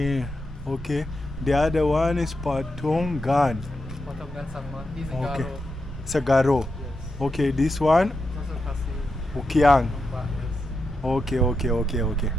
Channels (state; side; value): normal; both; correlation 0.86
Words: The other one is Patongan. Patongan Sangma. He's a Okay. Garo. Sagaro. Yes. Okay, this one. Also Khasi. Kiang. Nongbah, yes. Okay.